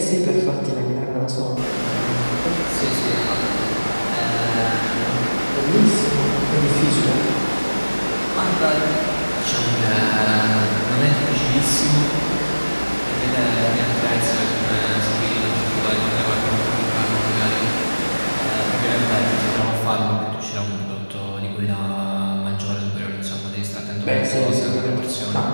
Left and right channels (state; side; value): inverted; both; correlation -1.00